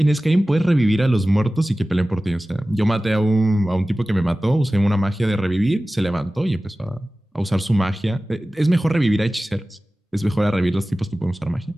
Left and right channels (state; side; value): normal; both; correlation 0.96